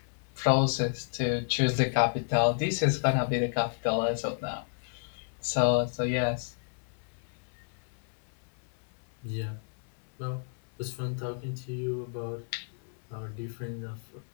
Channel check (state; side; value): silent; right; 57 dB below the other